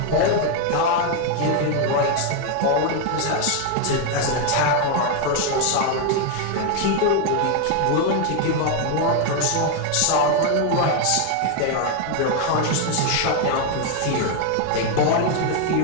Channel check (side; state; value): both; different; correlation 0.01